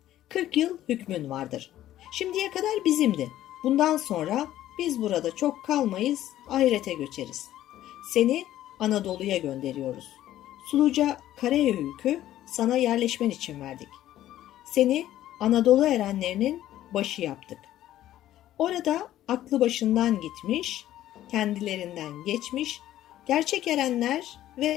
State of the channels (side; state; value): right; quieter; 13.2 dB